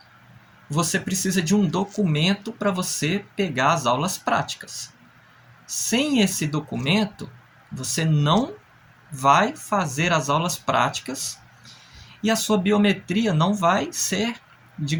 você precisa de um documento para você pegar as aulas práticas. Sem esse documento, você não vai fazer as aulas práticas e a sua biometria não vai ser,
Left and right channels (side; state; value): both; identical; correlation 1.00